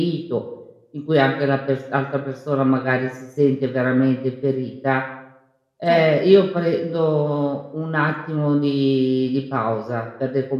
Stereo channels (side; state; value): both; identical; correlation 1.00